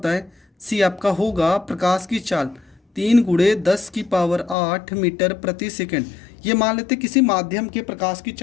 है? सी आपका होगा प्रकाश की चाल 3 × 10⁸ मीटर प्रति सेकेंड। ये मान लेते किसी माध्यम के प्रकाश की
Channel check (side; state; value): right; drops out; at 4.5 s